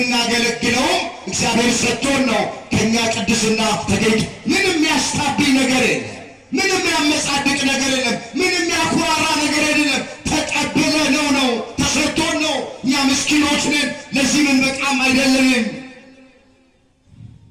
እግዚአብሔር ሰጥቶን ነው። ከኛ ቅድስና ተገኝቶ ምንም ያስታብኝ ነገር የለም፣ ምንም ያመጻድቅ ነገር የለም፣ ምንም ያኩራራ ነገር የለም። ተቀብለነው ነው፣ ተሰጥቶን ነው። እኛ ምስኪኖች ነን፣ ለዚህ ምን በቃም አይደለንም።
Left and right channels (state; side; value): identical; both; correlation 1.00